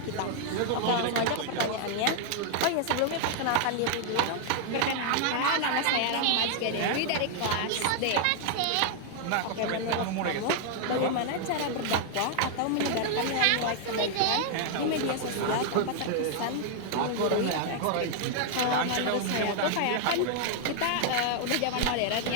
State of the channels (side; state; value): both; different; correlation 0.00